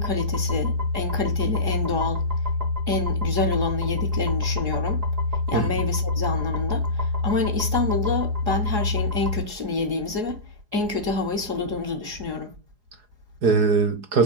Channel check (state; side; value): late; left; 4.8 ms